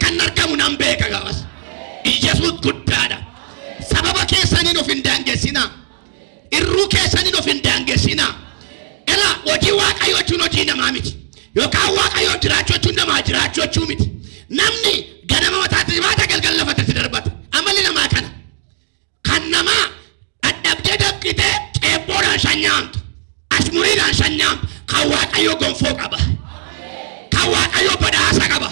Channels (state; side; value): silent; left; digital silence